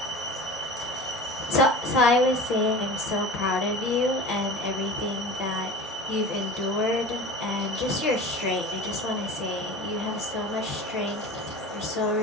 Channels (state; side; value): normal; both; correlation 0.35